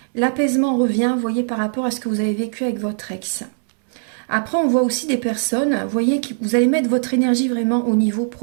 L'apaisement revient, vous voyez, par rapport à ce que vous avez vécu avec votre ex. Après, on voit aussi des personnes, vous voyez, que vous allez mettre votre énergie vraiment au niveau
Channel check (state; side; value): silent; left; digital silence